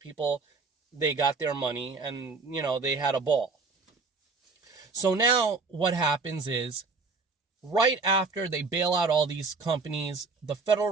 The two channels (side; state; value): left; quieter; 4.2 dB